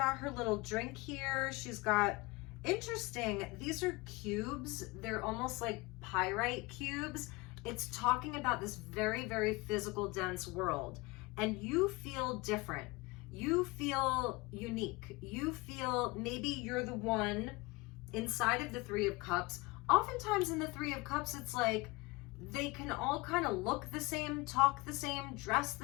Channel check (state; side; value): quieter; right; 24.0 dB